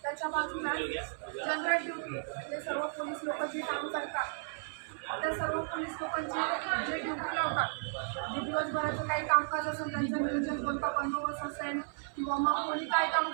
त्याच्या बाजूला जनरल ड्युटी म्हणजे सर्व पोलीस लोक जे काम करतात त्या सर्व पोलीस लोकांची जे ड्युटी लावतात जे दिवसभराचं काही कामकाज असेल त्यांचं नियोजन कोणता बंदोबस्त असेल किंवा मग कोणी काय काम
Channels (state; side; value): silent; left; 55 dB below the other